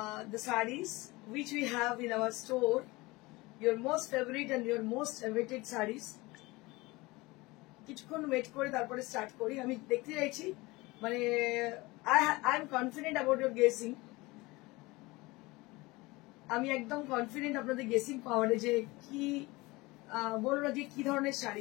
sarees which we have in our store. Your most favorite and your most awaited sarees. কিছুক্ষণ ওয়েট করে তারপরে স্টার্ট করি। আমি দেখতে চাইছি মানে I am confident about your guessing. আমি একদম কনফিডেন্ট আপনাদের গেসিং পাওয়ারে যে কি বলুন আজকে কি ধরনের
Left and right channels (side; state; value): right; quieter; 22.3 dB